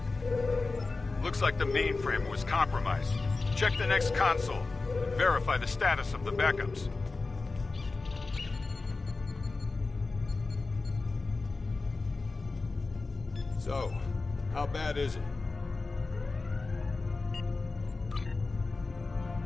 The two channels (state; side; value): quieter; right; 3.7 dB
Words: Looks like the mainframe was compromised. Check the next console. Verify the status of the backups. So, how bad is it?